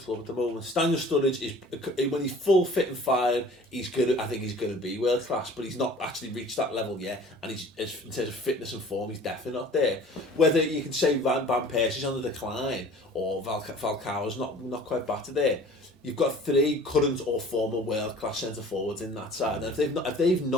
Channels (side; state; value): both; normal; correlation 0.47